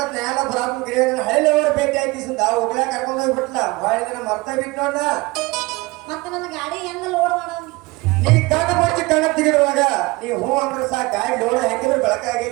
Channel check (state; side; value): quieter; left; 23.0 dB